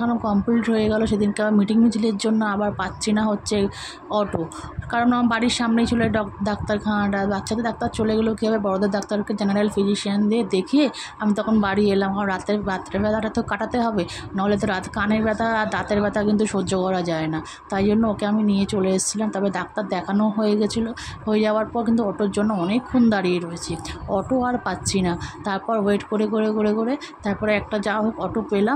কমপ্লিট হয়ে গেল। সেদিনকে আবার মিটিং মিছিলের জন্য আবার পাচ্ছি না হচ্ছে অটো, কারণ আমার বাড়ির সামনেই ছিল ডাক্তারখানাটা। বাচ্চাদের ডাক্তার চলে গেলেও কী হবে, বড়দের ডাক্তারকে জেনারেল ফিজিশিয়ান দিয়ে দেখিয়ে আমি তখন বাড়ি এলাম। কারণ রাতের ব্যথাটা তো কাটাতে হবে, নাহলে তো কানের ব্যথা আর দাঁতের ব্যথা কিন্তু সহ্য করা যায় না। তাই জন্য ওকে আমি নিয়ে চলে এসেছিলাম। তবে ডাক্তার দেখানো হয়ে গেছিলো। হয়ে যাওয়ার পর কিন্তু অটোর জন্য অনেকক্ষণ দাঁড়িয়ে রয়েছি, অটো আর পাচ্ছি না। তারপর ওয়েট করে তারপরে একটা যা হোক অটো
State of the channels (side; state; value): both; identical; correlation 1.00